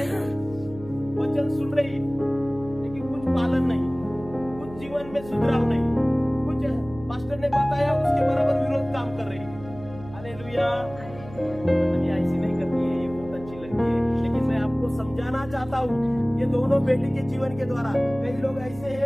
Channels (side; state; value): right; noise; hum, 16 dB below the sound